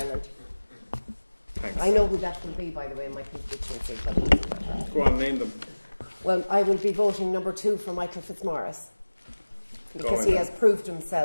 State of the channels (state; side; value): inverted; both; correlation -1.00